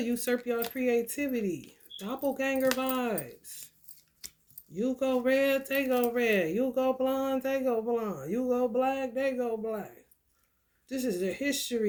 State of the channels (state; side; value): identical; both; correlation 1.00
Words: usurp your creativity. Doppelganger vibes. You go red, they go red. You go blonde, they go blonde. You go black, they go black. This is the